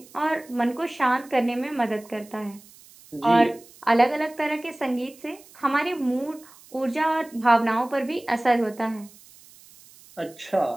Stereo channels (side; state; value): right; noise; hiss, 24 dB below the sound